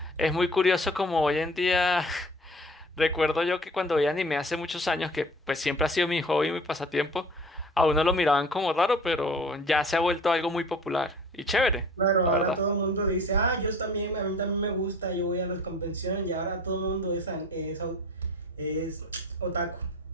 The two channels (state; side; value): normal; both; correlation 0.45